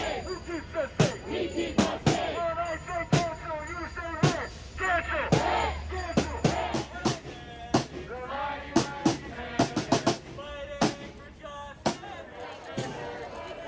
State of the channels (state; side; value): identical; both; correlation 1.00